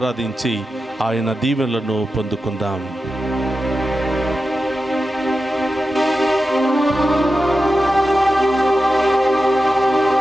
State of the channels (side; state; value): both; normal; correlation 0.91